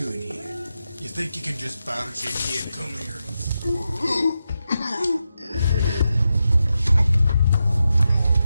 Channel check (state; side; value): inverted; both; correlation -0.88